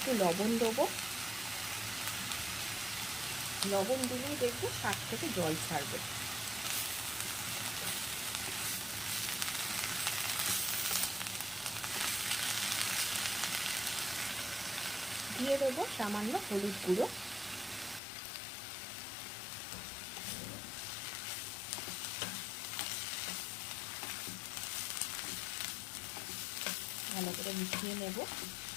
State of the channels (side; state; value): right; drops out; at 18.0 s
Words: লবণ দেবো। লবণ দিলেই দেখবে শাক থেকে জল ছাড়বে। দিয়ে দেবো সামান্য হলুদ গুঁড়ো। ভালো করে মিশিয়ে নেব।